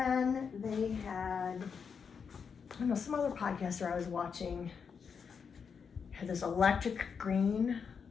they had, I don't know, some other podcaster I was watching had this electric green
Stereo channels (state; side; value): quieter; right; 6.2 dB